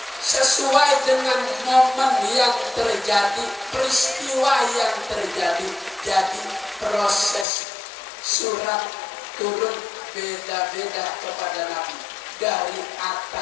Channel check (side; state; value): right; drops out; at 7.5 s